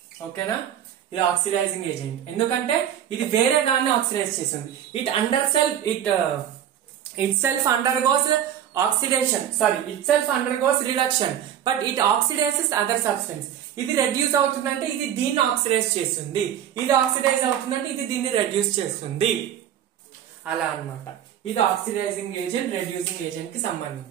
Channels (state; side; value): quieter; left; 10.1 dB